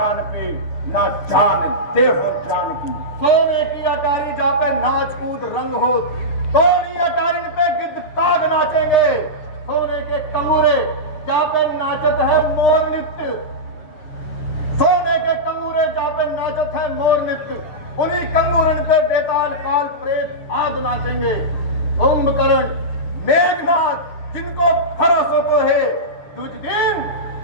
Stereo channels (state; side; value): late; right; 6.6 ms